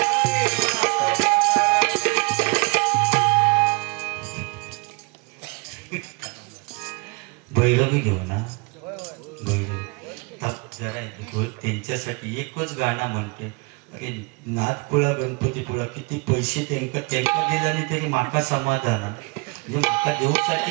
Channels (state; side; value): quieter; left; 28.4 dB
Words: भैरवी घेऊ ना भैरवी जरा त्यांच्यासाठी एकच गाणं म्हणते अरे नाथकुळा गणपतीपुळा किती पैसे त्यांका दिल्याने तरी माका समाधान आहे. म्हणजे माका देऊसाठी